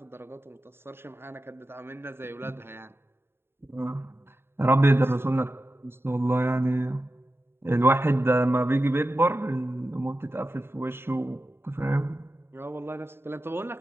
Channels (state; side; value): late; left; 0.11 ms